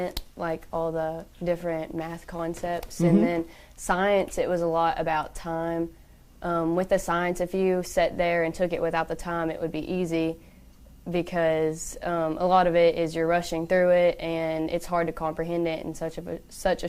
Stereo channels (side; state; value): both; identical; correlation 1.00